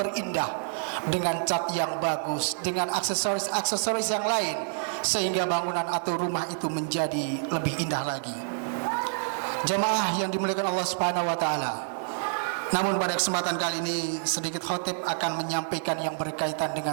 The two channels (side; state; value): left; silent; digital silence